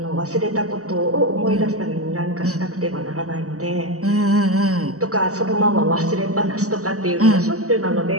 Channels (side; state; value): left; late; 0.66 ms